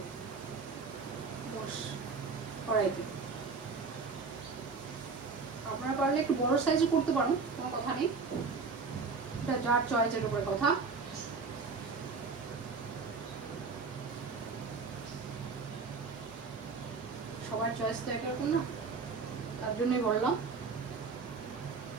কড়াইতে। আপনারা পারলে একটু বড় সাইজে করতে পারেন, কোনো কথা নেই, এটা যার চয়েসের উপরে কথা। সবার চয়েস তো একরকম না, তার জন্যই বললাম।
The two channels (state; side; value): quieter; left; 4.7 dB